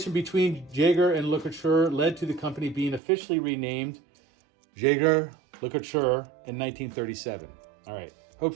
between Jaeger and LeCoultre led to the company being officially renamed Jaeger-LeCoultre in 1937. All right,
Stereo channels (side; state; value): left; drops out; at 3.0 s